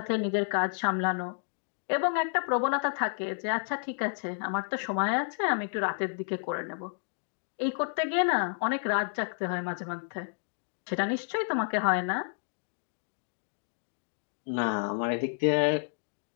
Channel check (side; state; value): right; silent; digital silence